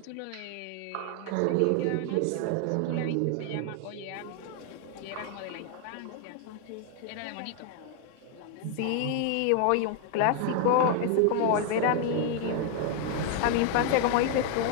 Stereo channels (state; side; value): different; both; correlation 0.00